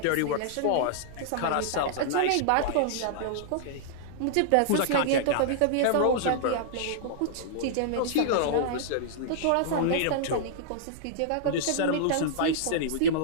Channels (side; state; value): both; different; correlation -0.02